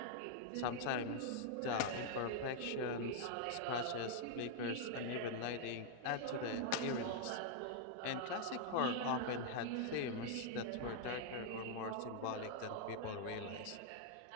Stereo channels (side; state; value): both; different; correlation -0.01